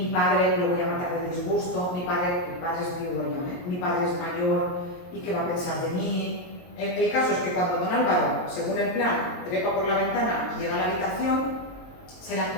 padre lo voy a matar de disgusto, mi padre es viudo ya, mi padre es mayor y qué va a pensar de mí. El caso es que cuando don Álvaro, según el plan, trepa por la ventana y llega a la habitación, se la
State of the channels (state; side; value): late; right; 22 ms